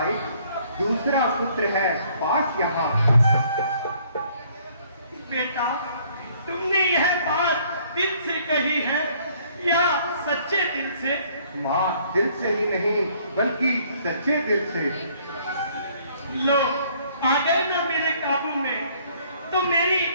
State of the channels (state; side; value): inverted; both; correlation -0.61